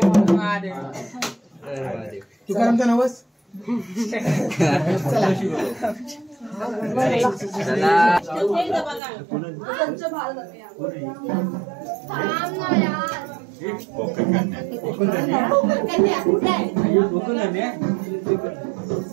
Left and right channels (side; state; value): left; drops out; at 9.0 s